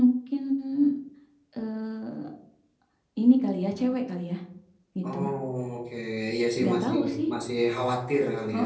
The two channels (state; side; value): identical; both; correlation 1.00